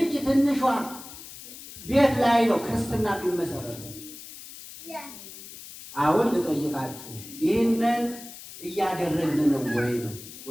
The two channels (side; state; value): left; noise; hiss, 15 dB below the sound